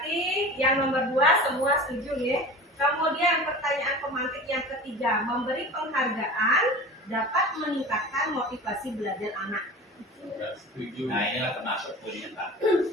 yang nomor 2 semua setuju nih. Kemudian pertanyaan pemantik yang ketiga, memberi penghargaan dapat meningkatkan motivasi belajar anak. Setuju. Nah inilah termasuk poinnya Pak.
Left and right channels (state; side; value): normal; both; correlation 0.35